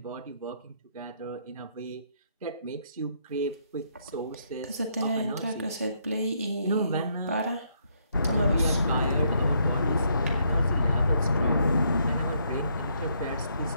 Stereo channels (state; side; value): inverted; both; correlation -0.73